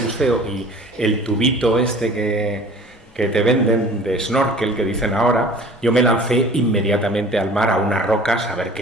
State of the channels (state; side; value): normal; both; correlation 0.46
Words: y el tubito este que te venden de snorkel, que dicen ahora, yo me lancé inmediatamente al mar, a unas rocas, a ver